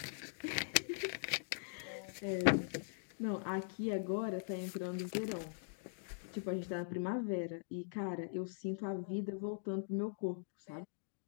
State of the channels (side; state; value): right; silent; digital silence